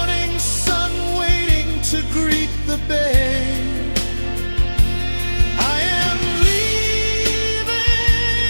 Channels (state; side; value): inverted; both; correlation -1.00